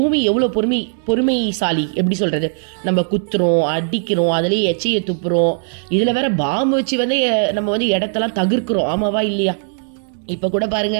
எவ்வளவு பொறுமைசாலி, எப்படி சொல்றது? நம்ம குத்துறோம், அடிக்கிறோம், அதுலயே எச்சையை துப்புறோம், இதுல வேற பாம்பு வச்சு வந்து நம்ம வந்து இடத்தெல்லாம் தகர்க்கிறோம். ஆமாவா இல்லையா? இப்ப கூட பாருங்க,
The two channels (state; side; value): silent; left; digital silence